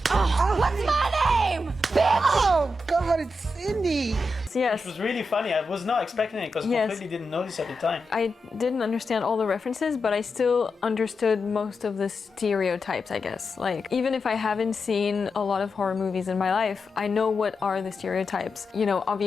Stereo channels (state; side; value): normal; both; correlation 0.88